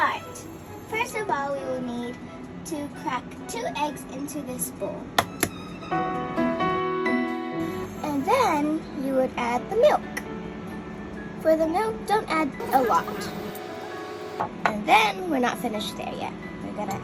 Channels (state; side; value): identical; both; correlation 1.00